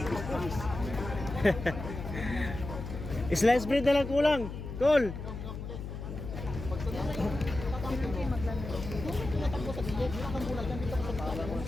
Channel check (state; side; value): noise; left; hum, 8 dB below the sound